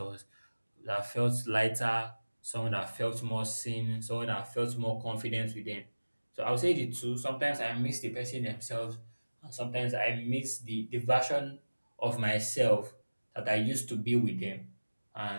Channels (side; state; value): both; inverted; correlation -1.00